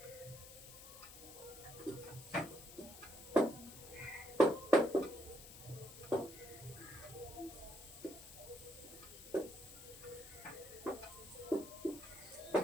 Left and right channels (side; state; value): left; noise; hiss, 15 dB below the sound